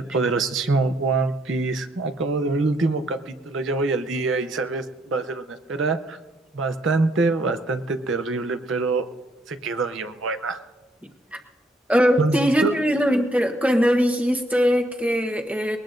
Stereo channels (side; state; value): both; normal; correlation 0.70